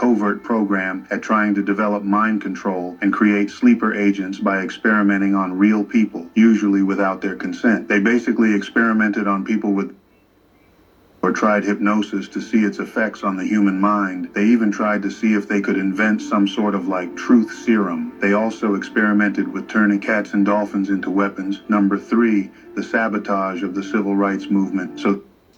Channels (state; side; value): identical; both; correlation 1.00